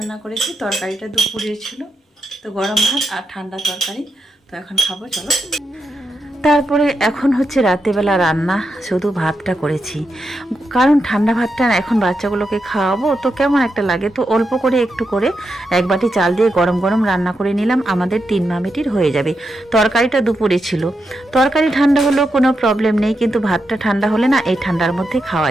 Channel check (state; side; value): normal; both; correlation 0.85